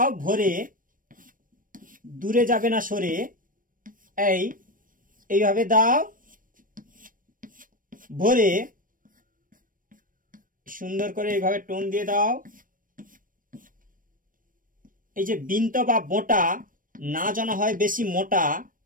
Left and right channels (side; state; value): left; late; 0.40 ms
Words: ভরে, দূরে যাবে না সরে। এইভাবে দাও ভরে, সুন্দর করে এইভাবে টোন দিয়ে দাও। এই যে বিন্ত বা বোঁটা না যেন হয় বেশি মোটা,